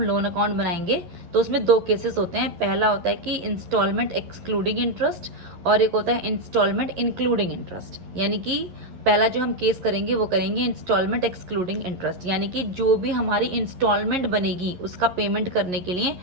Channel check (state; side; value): late; left; 11 ms